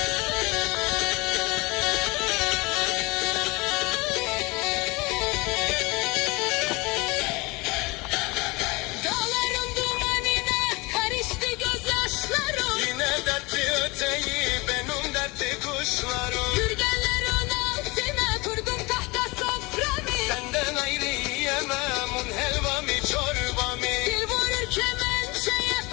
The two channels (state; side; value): quieter; right; 24.8 dB